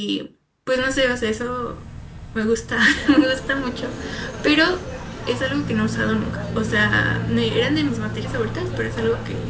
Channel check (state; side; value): identical; both; correlation 1.00